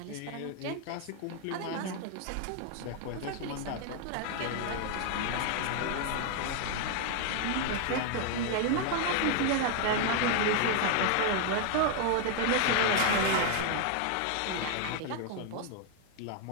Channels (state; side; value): different; both; correlation 0.00